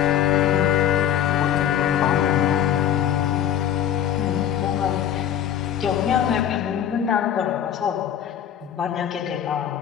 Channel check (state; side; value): quieter; right; 10.1 dB